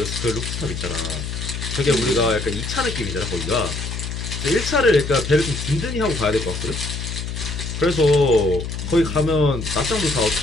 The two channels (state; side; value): noise; left; hum, 5 dB below the sound